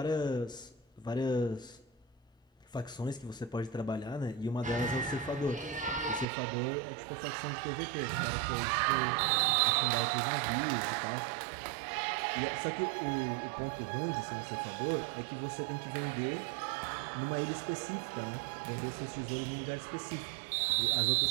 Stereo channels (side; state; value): left; drops out; at 6.2 s